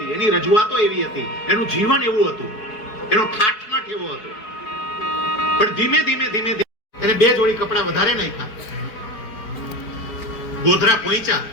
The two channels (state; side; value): late; right; 4.7 ms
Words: એની રજૂઆતો એવી હતી, એનું જીવન એવું હતું, એનો ઠાઠમાઠ એવો હતો. પણ ધીમે ધીમે ધીમે એને બે જોડી કપડા વધારે નાખ્યા. ગોધરા પહોંચ્યા,